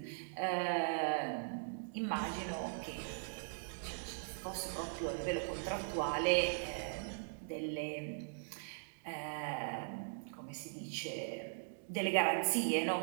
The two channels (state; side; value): silent; left; digital silence